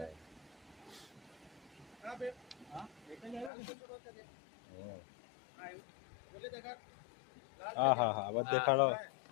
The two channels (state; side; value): drops out; right; at 3.5 s